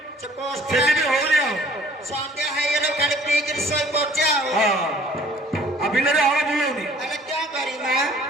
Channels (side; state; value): both; normal; correlation 0.54